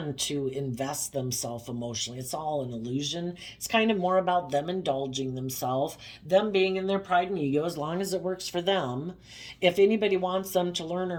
to invest themselves emotionally. It's all an illusion. It's kind of more about them indulging themselves, them being in their pride and ego as long as it works for them. If anybody wants them to learn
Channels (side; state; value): both; identical; correlation 1.00